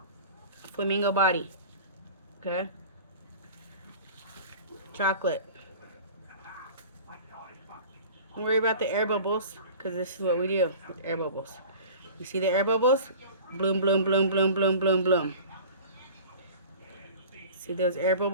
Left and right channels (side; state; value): both; inverted; correlation -0.41